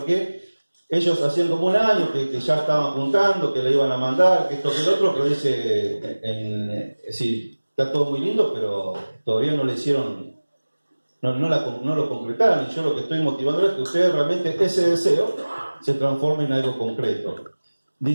ellos hacían como un año que ya estaban juntando, que le iban a mandar, que esto, que el otro, pero dice, sí, está todo muy lindo, pero todavía no le hicieron, no lo concretaron, y yo lo que estoy motivando es que ustedes realmente ese deseo se transforme en algo concreto.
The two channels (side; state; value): both; inverted; correlation -1.00